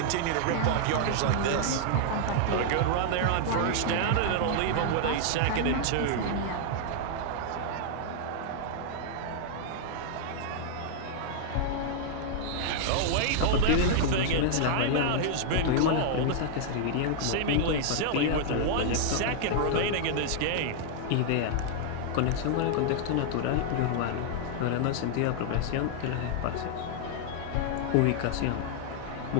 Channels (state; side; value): different; both; correlation -0.01